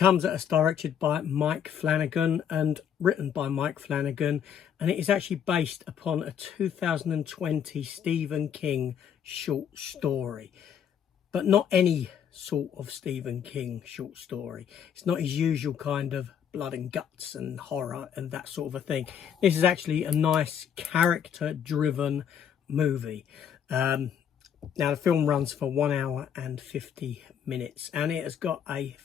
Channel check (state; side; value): quieter; right; 8.5 dB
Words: at us directed by Mike Flanagan and written by Mike Flanagan, and it is actually based upon a 2020 Stephen King short story, but not any sort of Stephen King short story. It's not his usual kind of blood and guts and horror and that sort of a thing. This is actually a nice character-driven movie. Now, the film runs for 1 hour and 50 minutes, and it has got a